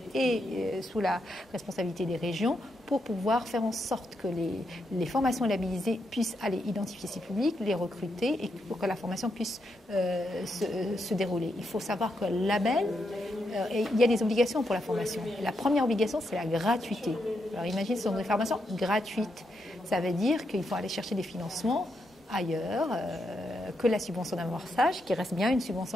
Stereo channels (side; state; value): both; normal; correlation 0.82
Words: est sous la responsabilité des régions, pour pouvoir faire en sorte que les formations labellisées puissent aller identifier ces publics, les recruter et pour que la formation puisse se dérouler. Il faut savoir que le label, il y a des obligations pour la formation. La première obligation, c'est la gratuité. Alors imagine, ce sont des formations gratuites. Ça veut dire qu'il faut aller chercher des financements ailleurs que la subvention d'amorçage, qui reste bien une